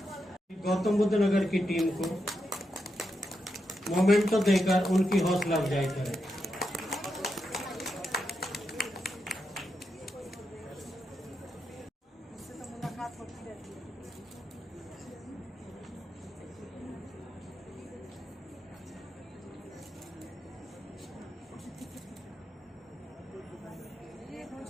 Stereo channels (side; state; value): both; normal; correlation 0.85